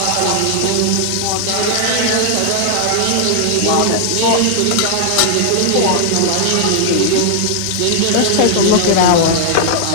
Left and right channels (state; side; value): different; both; correlation -0.01